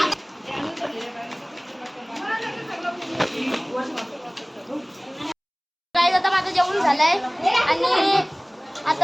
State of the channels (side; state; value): both; identical; correlation 1.00